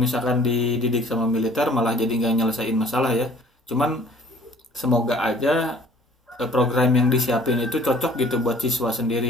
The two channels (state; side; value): normal; both; correlation 0.53